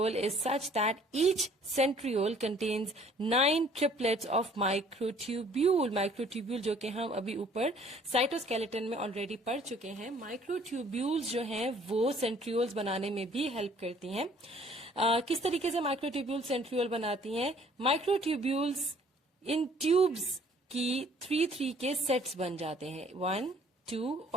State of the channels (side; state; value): both; normal; correlation 0.57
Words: is such that each centriole contains 9 triplets of microtubule. Microtubule जो कि हम अभी ऊपर साइटोस्केलेटन में ऑलरेडी पढ़ चुके हैं. माइक्रोट्यूब्यूल्स जो हैं वो सेंट्रियोल्स बनाने में भी हेल्प करती हैं. किस तरीके से माइक्रोट्यूब्यूल सेंट्रियोल बनाती हैं? माइक्रोट्यूब्यूल्स इन ट्यूब्स की 3-3 के सेट्स बन जाते हैं, 1, 2